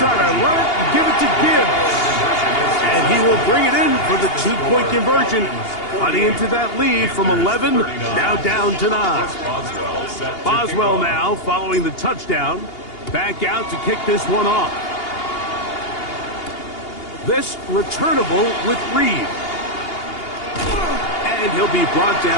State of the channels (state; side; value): late; right; 2.8 ms